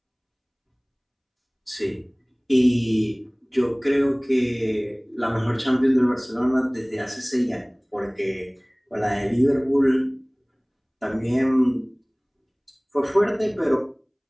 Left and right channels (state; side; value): identical; both; correlation 1.00